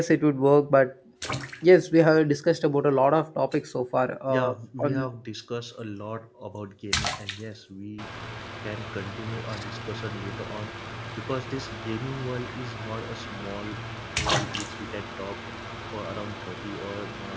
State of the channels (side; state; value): both; identical; correlation 1.00